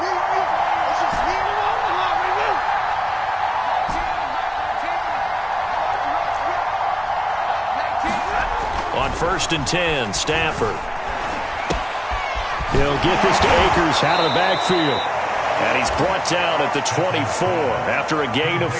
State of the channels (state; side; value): identical; both; correlation 1.00